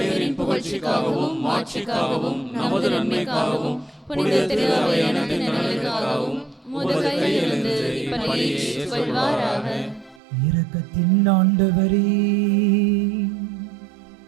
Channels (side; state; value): left; drops out; at 10.2 s